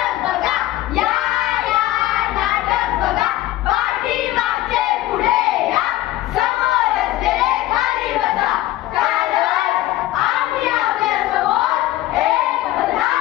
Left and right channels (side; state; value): right; quieter; 15.5 dB